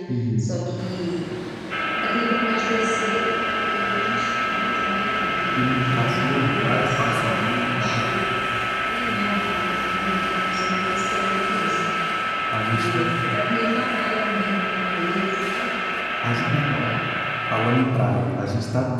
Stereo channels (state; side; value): identical; both; correlation 1.00